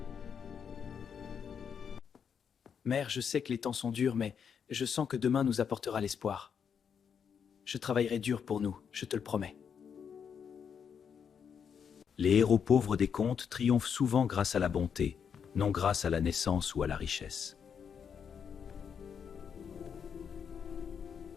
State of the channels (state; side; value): quieter; right; 7.2 dB